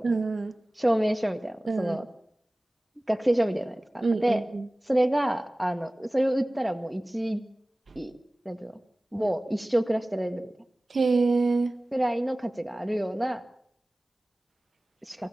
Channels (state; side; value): normal; both; correlation 0.98